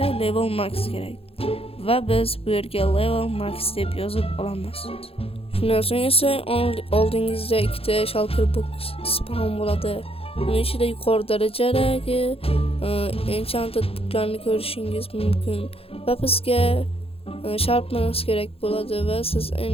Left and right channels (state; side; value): late; right; 0.28 ms